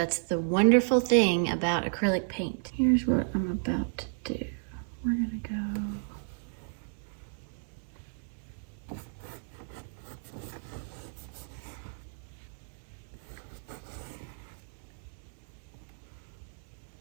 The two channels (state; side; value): silent; left; digital silence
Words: the wonderful thing about acrylic paint. Here's what I'm about to do. We're gonna go